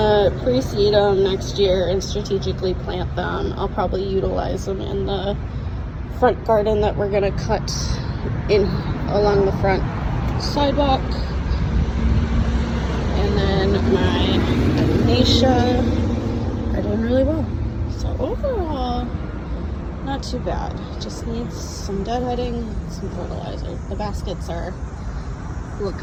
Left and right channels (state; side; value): identical; both; correlation 1.00